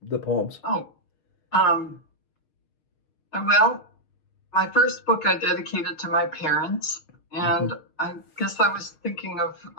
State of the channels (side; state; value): right; late; 6.6 ms